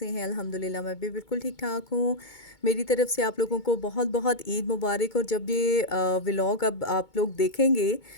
हैं। अल्हम्दुलिल्लाह मैं भी बिल्कुल ठीक ठाक हूँ। मेरी तरफ से आप लोगों को बहुत बहुत ईद मुबारक। और जब ये व्लॉग अब आप लोग देखेंगे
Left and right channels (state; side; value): late; right; 2.2 ms